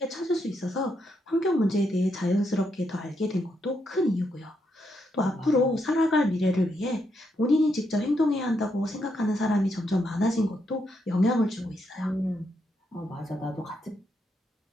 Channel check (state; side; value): normal; both; correlation 0.80